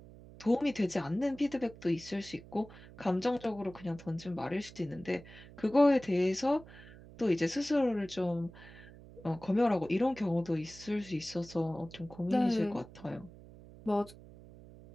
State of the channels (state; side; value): noise; right; hum, 19 dB below the sound